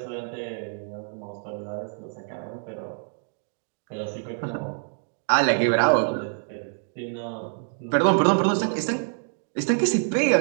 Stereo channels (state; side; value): silent; left; digital silence